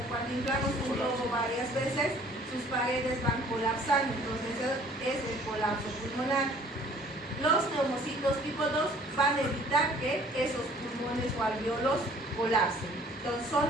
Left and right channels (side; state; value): both; normal; correlation 0.55